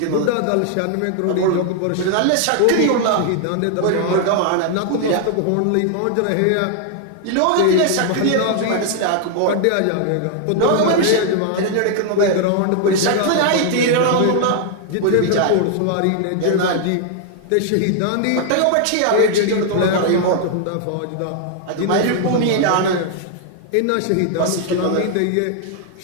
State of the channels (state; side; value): different; both; correlation 0.00